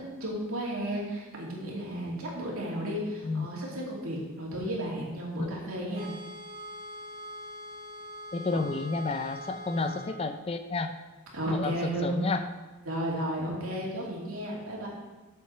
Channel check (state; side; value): normal; both; correlation 0.40